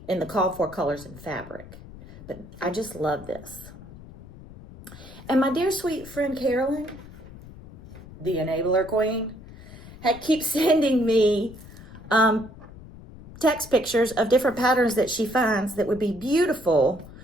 in the called for colors and fabric. But I just love this. And my dear sweet friend Carolyn, the enabler queen, keeps sending me text pictures of different patterns that she finds that would be beautiful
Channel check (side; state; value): left; noise; rumble, 17 dB below the sound